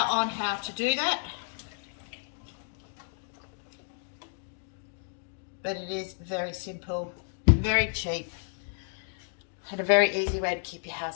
on how to do that. But it is very simple, very cheap, and a very easy way to keep your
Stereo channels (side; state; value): right; silent; 57 dB below the other